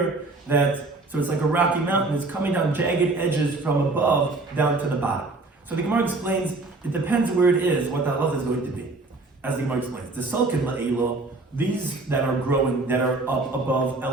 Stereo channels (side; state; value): left; quieter; 3.3 dB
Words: so it's like a rocky mountain. It's coming down jagged edges from above down to the bottom. So the Gemara explains, it depends where it is, what the halacha is going to be. As the Gemara explains, the sulkin la'ilo, these that are growing, that are up above,